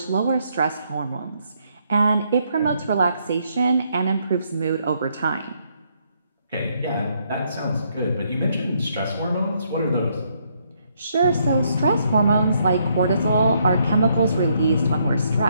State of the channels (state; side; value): inverted; both; correlation -0.73